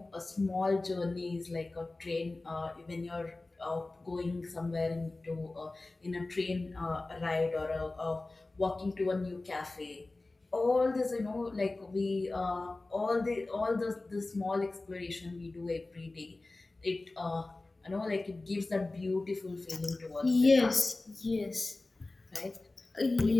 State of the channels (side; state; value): right; quieter; 3.1 dB